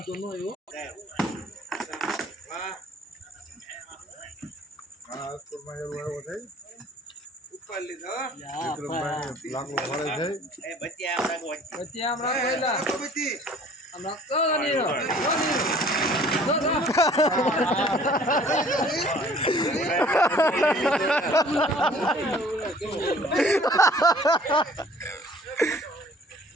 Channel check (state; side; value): normal; both; correlation 0.53